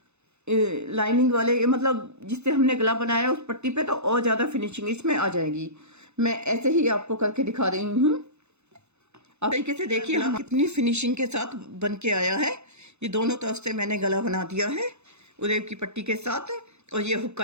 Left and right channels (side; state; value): left; late; 0.81 ms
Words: लाइनिंग वाले, मतलब जिससे हमने गला बनाया उस पट्टी पे, तो और ज़्यादा फिनिशिंग इसमें आ जाएगी। मैं ऐसे ही आपको करके दिखा रही हूँ। आप तरीके से देखिए हम कितनी फिनिशिंग के साथ बन के आया है। ये दोनों तरफ से मैंने गला बना दिया है उरेब की पट्टी के साथ। और ये